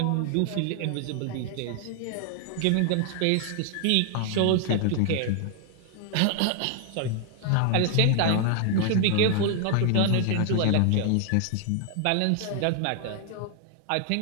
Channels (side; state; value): both; different; correlation 0.00